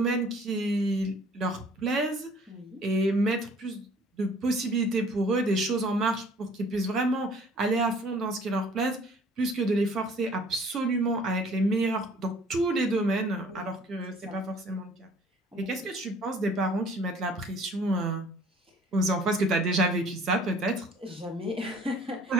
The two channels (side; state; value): both; normal; correlation 0.54